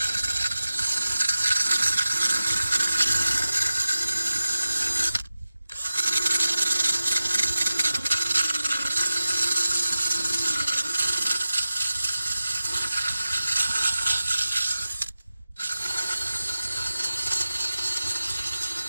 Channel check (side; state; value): both; inverted; correlation -0.95